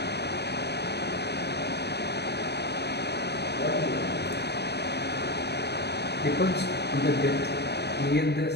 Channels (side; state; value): right; late; 0.48 ms